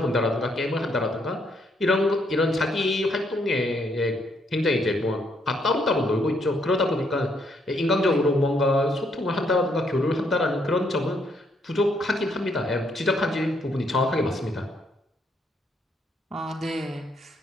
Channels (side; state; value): both; normal; correlation 0.72